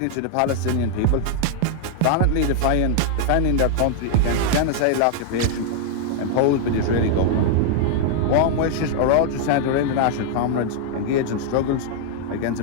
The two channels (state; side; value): different; both; correlation -0.01